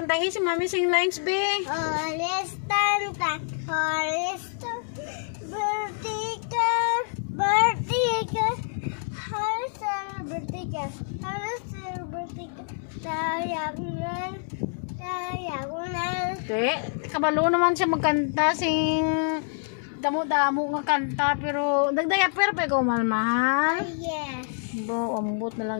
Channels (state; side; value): silent; right; 60 dB below the other